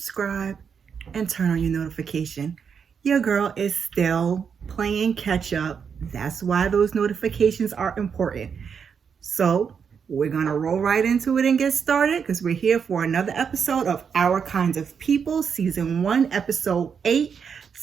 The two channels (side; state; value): left; quieter; 6.7 dB